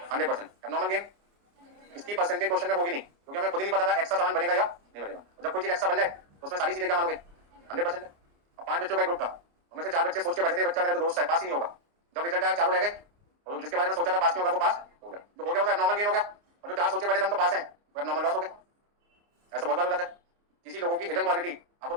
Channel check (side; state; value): left; late; 29 ms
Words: 100%। एब्नॉर्मल गेन इसकी परसेंटेज क्वेश्चन में होगी नहीं, क्योंकि हमें खुद ही नहीं पता था एक्स्ट्रा सामान बनेगा या नहीं बनेगा। जब कोई चीज एक्स्ट्रा बन जाए तो उसमें सारी चीजें क्या मानोगे, 100%। अब 5 बच्चों का ग्रुप था, उनमें से 4 बच्चे सोच के बैठे थे बच्चा मेरा तो दोस्त है, पास ही नहीं होगा। जब रिजल्ट आया चारों रह गए, और जिसके बारे में सोचा था पास नहीं होगा वो पास हो गया, जो हो गया वो एब्नॉर्मल गेन हो गया, और जो 4 सोचे बैठे थे हम तो पास हैं वो एब्नॉर्मल लॉस हो गया। ऐसा बहुत बार हो जाता है। किसी लोगों की हिडन क्वालिटी आपको